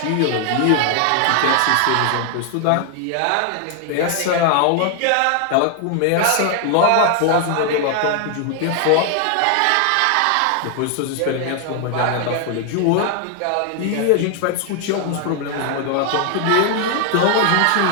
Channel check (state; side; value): different; both; correlation 0.00